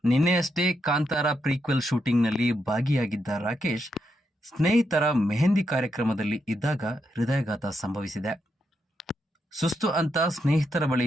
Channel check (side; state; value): both; normal; correlation 0.82